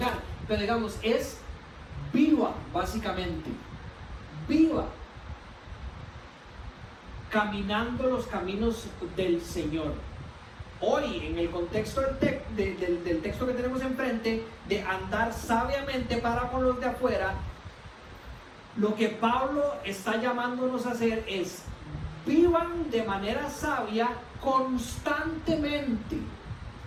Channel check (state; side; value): identical; both; correlation 1.00